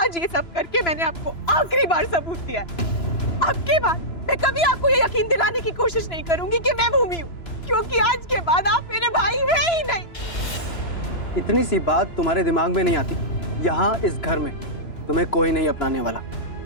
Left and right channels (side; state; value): right; late; 3.0 ms